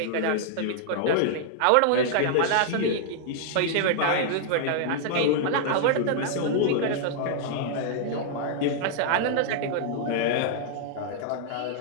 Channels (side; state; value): both; different; correlation -0.01